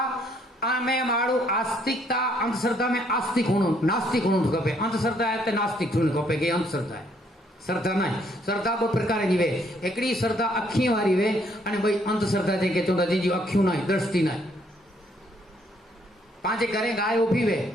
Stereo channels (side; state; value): both; normal; correlation 0.68